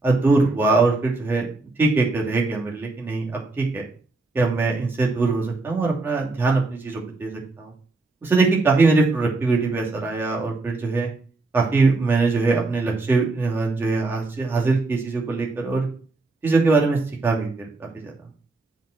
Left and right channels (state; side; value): quieter; left; 3.3 dB